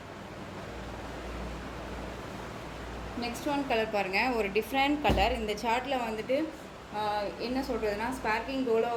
நெக்ஸ்ட் ஒன் கலர் பாருங்கள், ஒரு டிஃப்ரெண்ட் கலர். இந்த சார்ட்டில் வந்துட்டு என்ன சொல்கிறதுனா, ஸ்பார்க்கிங்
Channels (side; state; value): both; identical; correlation 1.00